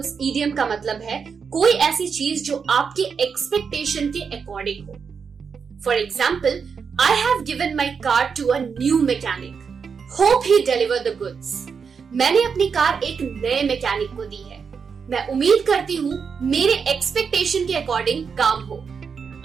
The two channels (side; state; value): left; quieter; 6.0 dB